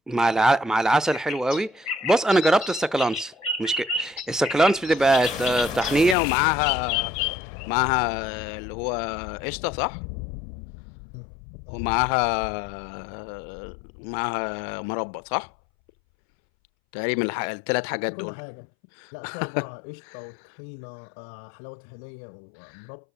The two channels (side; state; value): right; drops out; at 6.2 s